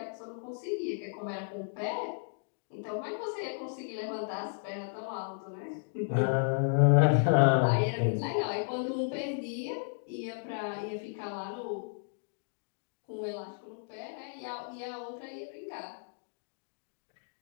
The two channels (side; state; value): right; silent; digital silence